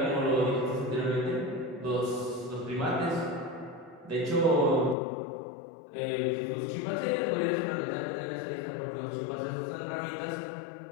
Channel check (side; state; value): right; drops out; at 5.0 s